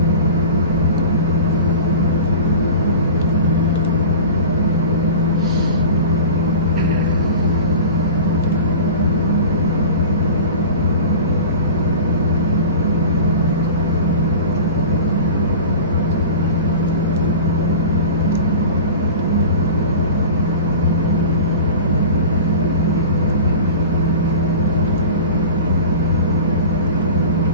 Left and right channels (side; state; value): both; inverted; correlation -0.36